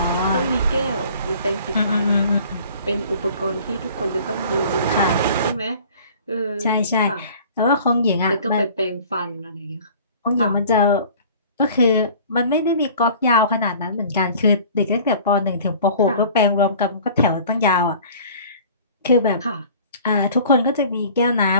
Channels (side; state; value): both; inverted; correlation -0.47